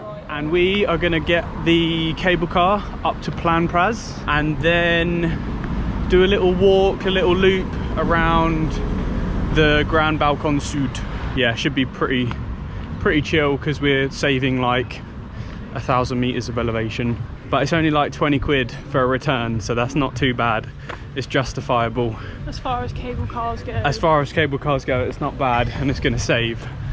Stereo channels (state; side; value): identical; both; correlation 1.00